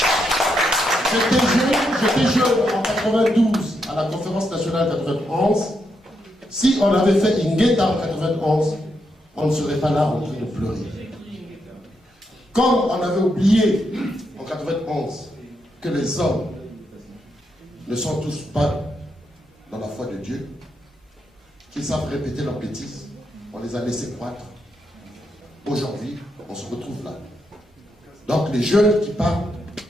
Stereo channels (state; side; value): normal; both; correlation 0.81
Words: J'étais jeune en 92 à la conférence nationale 91. Si on avait fait Ingeta en 91, on ne serait pas là en train de pleurer. Comme on avait oublié en 91 que les hommes ne sont tous pas dans la foi de Dieu, qui savent répéter leurs bêtises, on les a laissés croître. Aujourd'hui, on se retrouve là. Donc les jeunes qui parlent